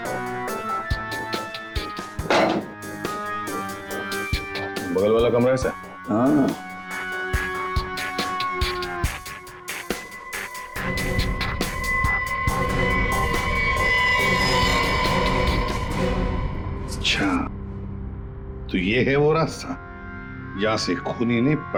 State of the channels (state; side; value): identical; both; correlation 1.00